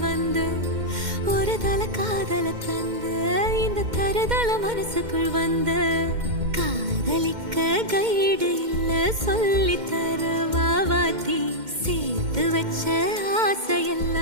வந்து ஒரு தல காதல தந்து இந்த தருதல மனசுக்குள் வந்து காதலிக்க கைடு இல்ல சொல்லி தர வாவாத்தி சேர்த்து வச்ச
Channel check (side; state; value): left; late; 2.1 ms